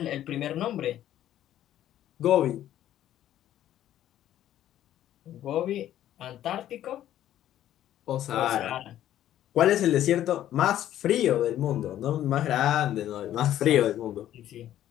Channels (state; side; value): quieter; right; 12.1 dB